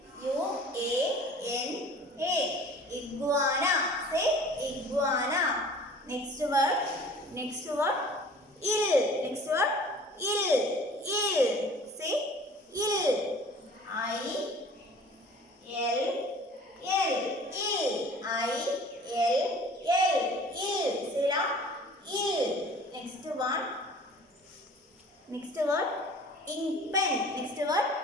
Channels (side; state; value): both; normal; correlation 0.47